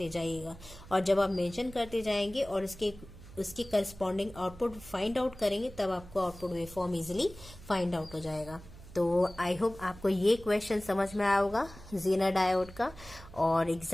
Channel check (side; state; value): right; noise; hum, 18 dB below the sound